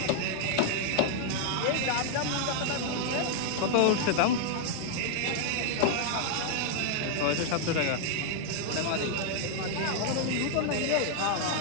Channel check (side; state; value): both; different; correlation 0.00